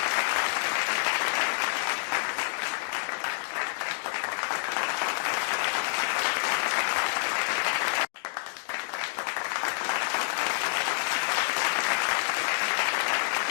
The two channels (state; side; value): silent; right; 56 dB below the other